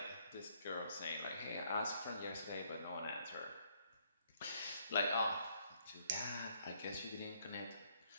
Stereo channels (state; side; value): inverted; both; correlation -0.68